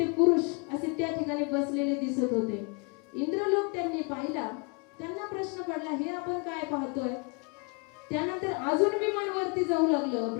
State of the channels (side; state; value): right; quieter; 33.1 dB